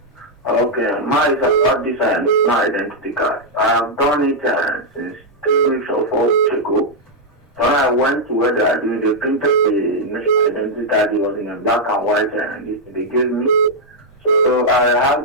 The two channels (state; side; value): normal; both; correlation -0.04